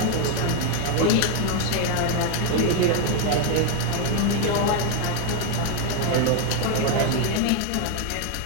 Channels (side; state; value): both; different; correlation 0.01